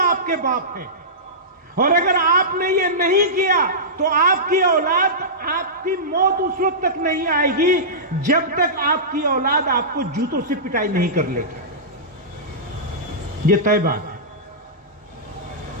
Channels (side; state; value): both; normal; correlation -0.17